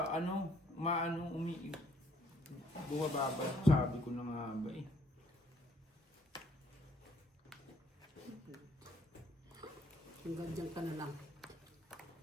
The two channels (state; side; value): normal; both; correlation 0.65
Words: ano, maano, bumababa. Sabi ko na nga ba eh. Hanggang dyan ka na lang.